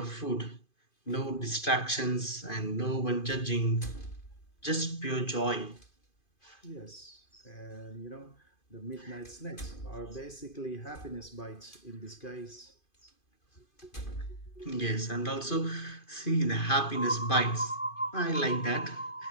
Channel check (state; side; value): late; right; 2.5 ms